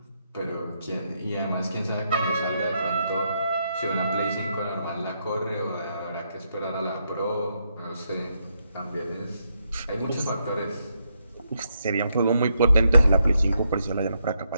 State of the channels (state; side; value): inverted; both; correlation -0.79